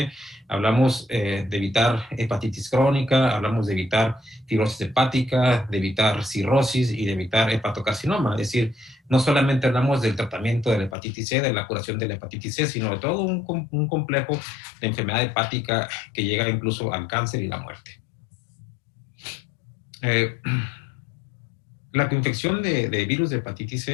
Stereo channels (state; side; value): drops out; right; at 11.0 s